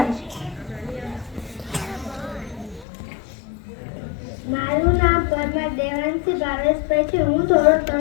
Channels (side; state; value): right; drops out; at 2.9 s